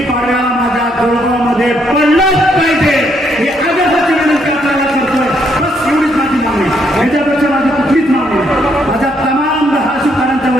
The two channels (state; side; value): normal; both; correlation 0.73